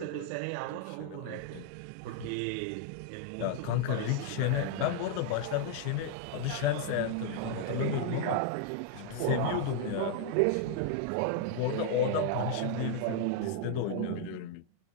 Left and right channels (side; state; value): both; different; correlation -0.01